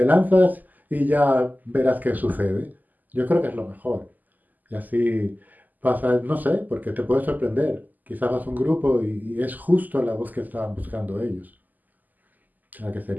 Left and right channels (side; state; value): left; late; 0.083 ms